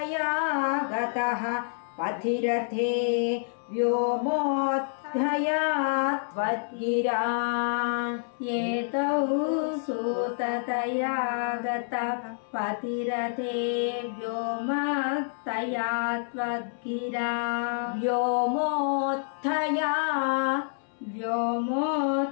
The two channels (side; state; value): right; silent; 59 dB below the other